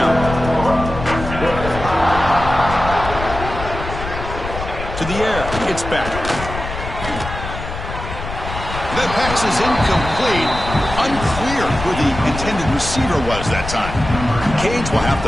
To the air, it's back. That pass is incomplete. Unclear who the intended receiver was that time. Cage will have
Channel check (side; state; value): left; noise; rumble, 8 dB below the sound